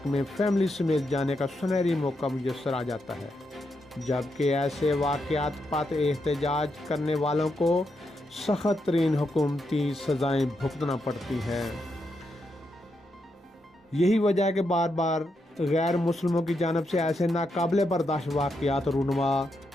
में फैमिली समेत जाने का सुनहरी मौका मुयस्सर आ जाता है, जबकि ऐसे वाक़यात पर एहतजाज करने वालों को सख्त तरीन हुकूमती सज़ाएँ भुगतना पड़ती हैं। यही वजह है कि बार बार गैर मुस्लिमों की जानब से ऐसे नाकाबिल बर्दाश्त वाक़यात रूनुमा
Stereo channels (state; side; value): normal; both; correlation 0.82